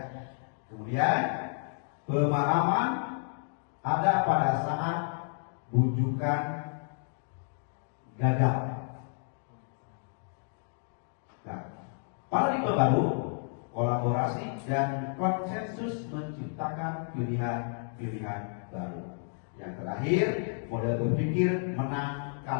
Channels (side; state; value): right; silent; digital silence